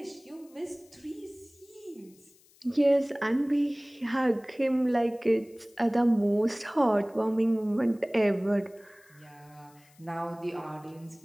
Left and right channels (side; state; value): left; noise; hiss, 29 dB below the sound